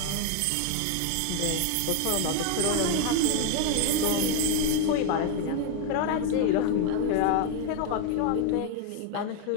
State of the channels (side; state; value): both; different; correlation 0.01